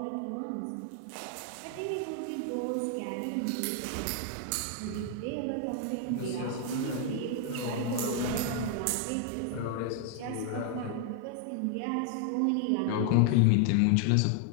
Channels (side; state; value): both; different; correlation 0.00